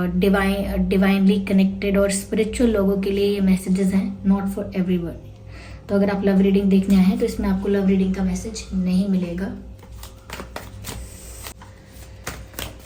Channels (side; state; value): both; identical; correlation 1.00